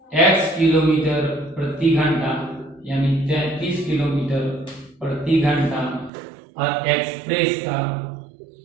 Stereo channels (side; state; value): left; drops out; at 6.1 s